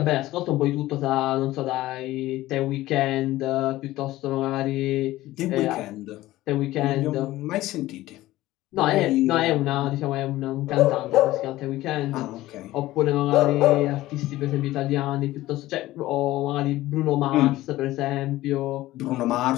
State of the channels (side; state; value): right; quieter; 16.6 dB